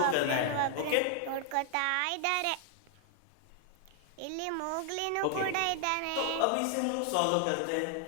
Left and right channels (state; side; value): different; both; correlation 0.00